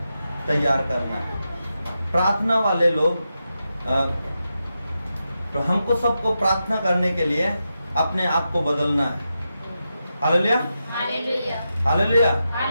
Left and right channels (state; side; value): inverted; both; correlation -0.88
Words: तैयार करना है। प्रार्थना वाले लोग तो हमको सबको प्रार्थना करने के लिए अपने आप को बदलना है। हालेलुया। हालेलुया।